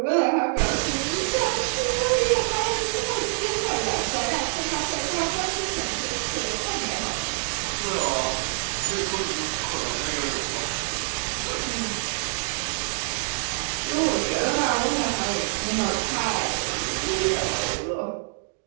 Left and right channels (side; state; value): left; silent; digital silence